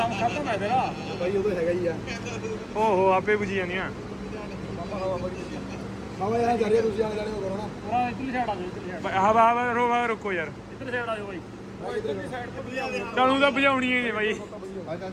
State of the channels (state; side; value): identical; both; correlation 1.00